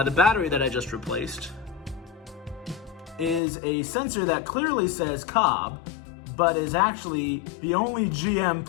the battery that I just replaced is a sensor that clearly says Cobb, but is actually the only GM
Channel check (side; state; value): right; drops out; at 3.4 s